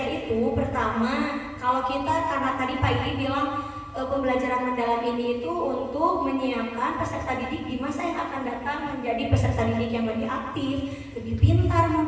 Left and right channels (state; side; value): identical; both; correlation 1.00